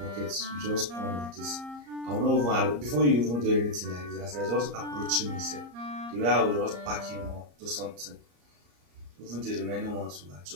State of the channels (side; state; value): left; late; 34 ms